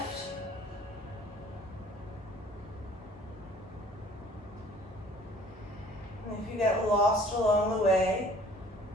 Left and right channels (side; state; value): both; normal; correlation 0.52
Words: And if you get lost along the way,